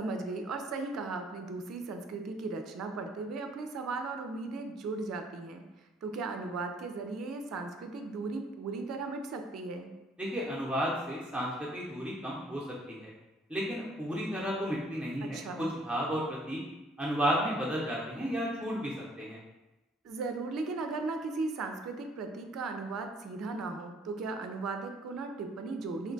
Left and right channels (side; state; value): both; normal; correlation 0.61